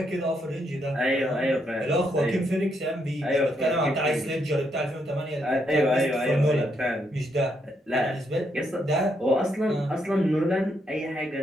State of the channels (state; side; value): normal; both; correlation 0.77